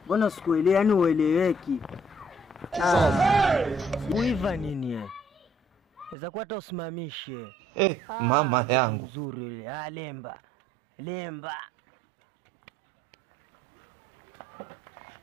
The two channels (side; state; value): left; drops out; at 6.2 s